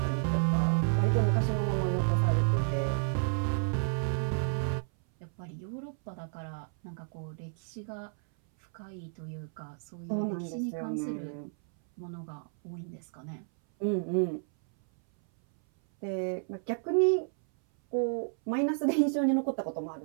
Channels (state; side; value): silent; left; 57 dB below the other